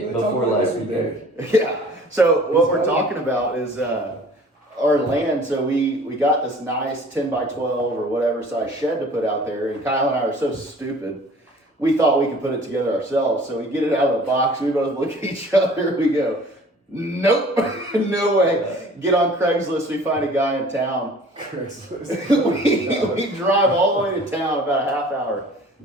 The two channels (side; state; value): both; normal; correlation 0.49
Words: We before talk last every weekend. day. Yeah. So what we're talking about is our land. So we got this nice 10 by 12 or whatever size shed to put out there, and Kyle and I are so stupid. we thought we could put it together ourselves. So we get it out of the box. We both look at each other. We go, nope, no way. Get on Craigslist. We find a guy in town. we drive all the way to town about a half hour.